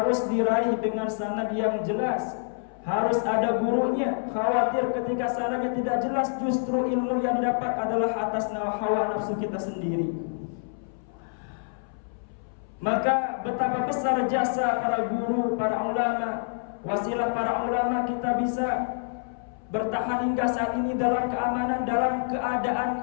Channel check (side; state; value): right; silent; 59 dB below the other